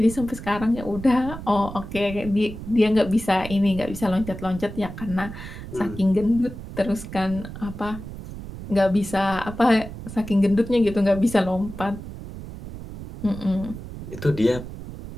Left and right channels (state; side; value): noise; right; rumble, 11 dB below the sound